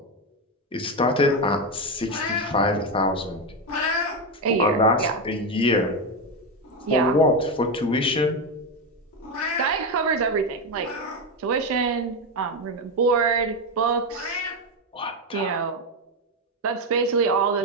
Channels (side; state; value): both; normal; correlation 0.10